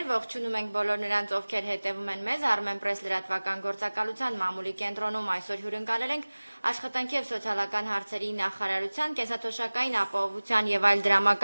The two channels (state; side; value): inverted; both; correlation -1.00